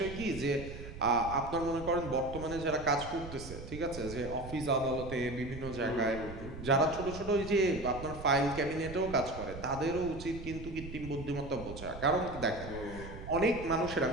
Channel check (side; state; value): right; noise; rumble, 11 dB below the sound